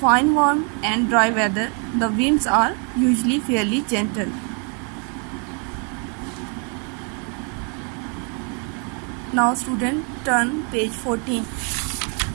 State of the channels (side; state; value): left; quieter; 38.3 dB